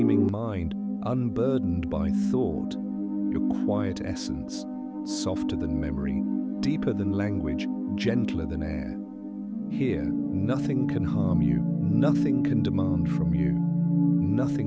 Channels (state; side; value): identical; both; correlation 1.00